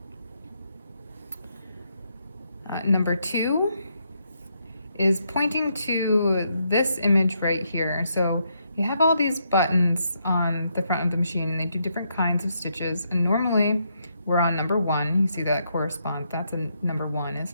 Number two is pointing to this image right here. So you have all these buttons on the front of the machine and they do different kinds of stitches, and normally we're on number one. You see that correspond, that's a number one, it's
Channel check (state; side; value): inverted; both; correlation -0.78